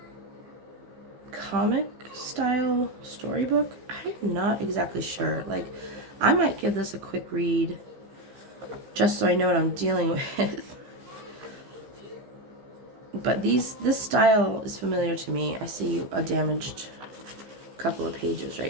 comic style storybook. I'm not exactly sure. Like, I might give this a quick read just so I know what I'm dealing with. But this style is familiar to me. I see a damaged couple of pages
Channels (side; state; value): left; late; 15 ms